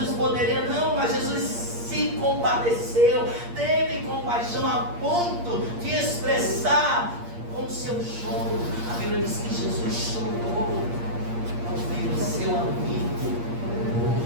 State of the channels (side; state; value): left; late; 8.5 ms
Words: poderia, não, mas Jesus se compadeceu, teve compaixão a ponto de expressar com o seu choro. A Bíblia diz que Jesus chorou ao ver o seu amigo